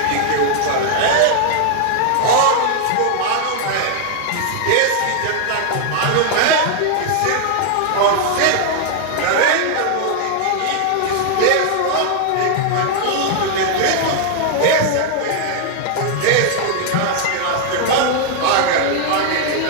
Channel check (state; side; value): different; both; correlation 0.00